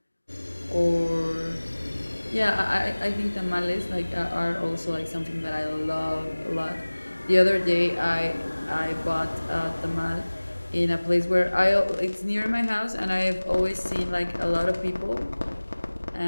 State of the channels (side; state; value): both; inverted; correlation -1.00